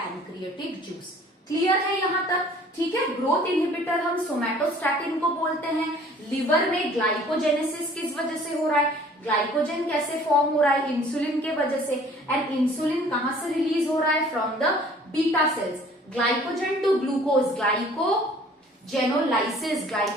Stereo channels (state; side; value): normal; both; correlation 0.52